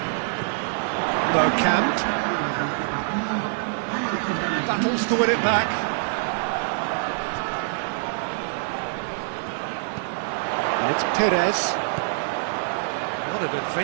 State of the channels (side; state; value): left; silent; digital silence